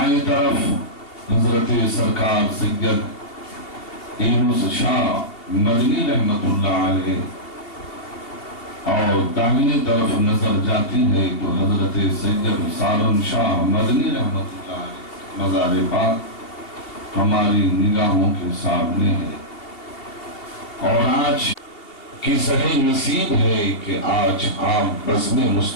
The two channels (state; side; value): late; right; 2.7 ms